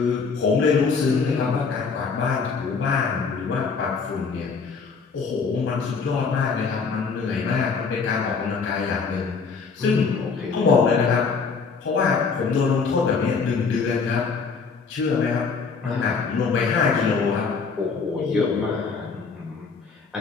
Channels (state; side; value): quieter; right; 5.1 dB